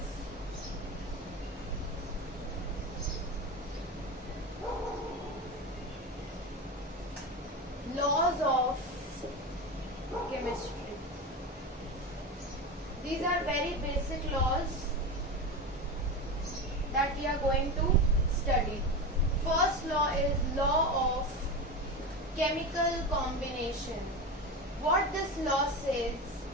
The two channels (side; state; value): both; normal; correlation 0.22